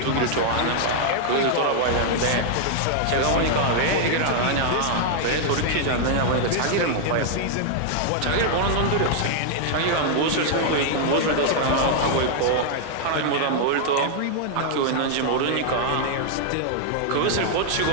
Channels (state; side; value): different; both; correlation -0.01